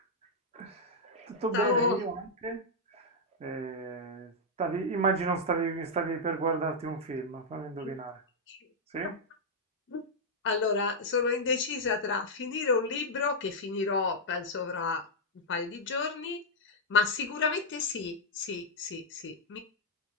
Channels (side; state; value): both; normal; correlation -0.04